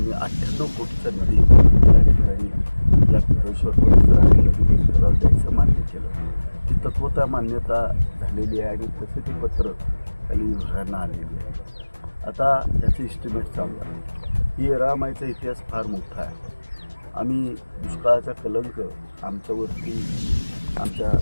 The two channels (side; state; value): both; inverted; correlation -1.00